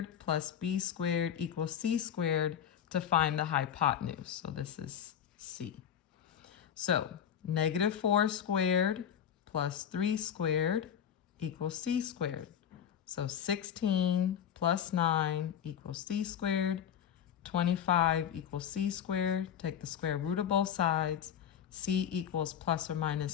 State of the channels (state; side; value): quieter; right; 9.1 dB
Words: plus b squared equals c squared to find the hypotenuse. So this is c. So negative 4 squared plus 3 squared equals c squared. So 16 plus 9 equals c squared. 25 equals c squared. Take the square root of both sides. C equals plus or